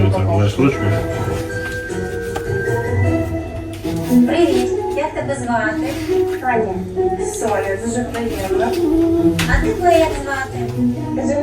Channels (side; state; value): both; identical; correlation 1.00